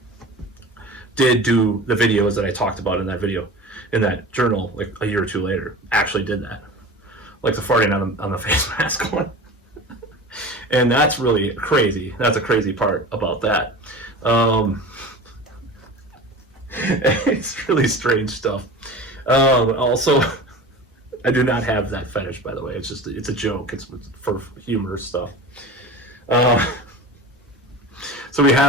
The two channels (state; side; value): normal; both; correlation 0.34